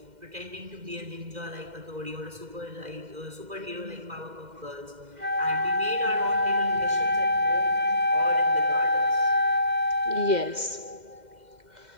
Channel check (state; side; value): late; left; 2.1 ms